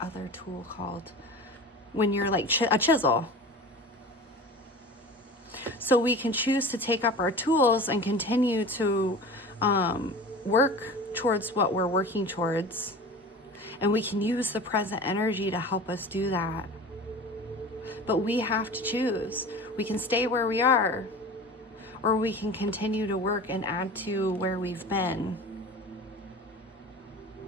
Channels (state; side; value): normal; both; correlation 0.36